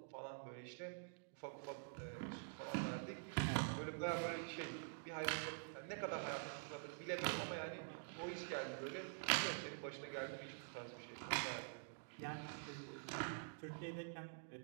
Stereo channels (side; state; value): left; silent; digital silence